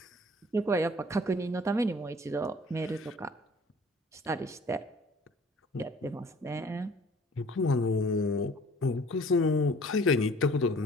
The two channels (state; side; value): normal; both; correlation 0.52